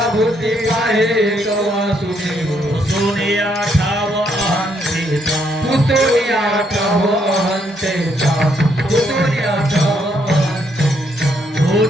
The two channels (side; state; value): both; normal; correlation 0.73